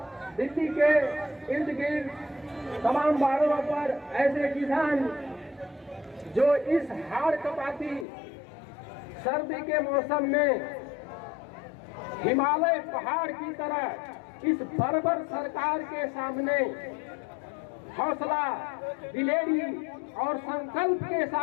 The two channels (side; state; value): right; drops out; at 8.1 s